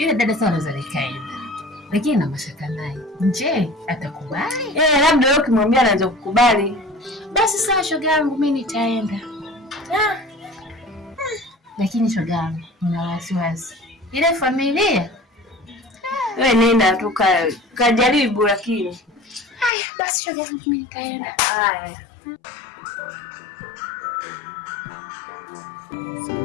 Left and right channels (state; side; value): drops out; right; at 19.7 s